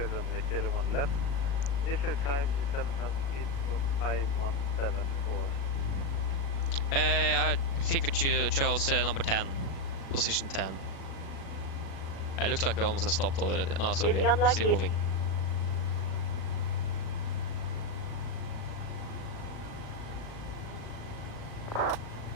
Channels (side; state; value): right; late; 36 ms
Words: runway 01 left. Initial climb is 7,000 feet, 5174. I think we chose number 10. Position 10. It looks like we almost have stopped already. No, sorry, Is we are unlikely? still moving.